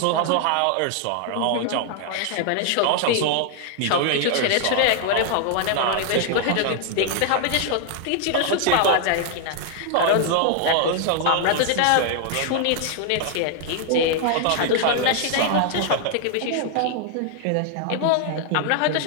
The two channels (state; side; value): different; both; correlation 0.00